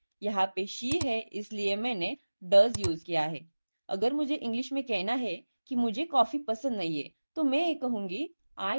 यहाँ पे शी है इसलिए मैंने डज यूज किया है। अगर मुझे इंग्लिश में कहना है कि मुझे कॉफी पसंद नहीं है तो मैं ये कहूंगी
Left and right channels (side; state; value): both; inverted; correlation -1.00